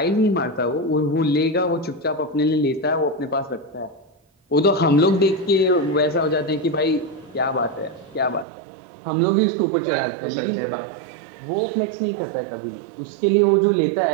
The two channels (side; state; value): left; drops out; at 8.5 s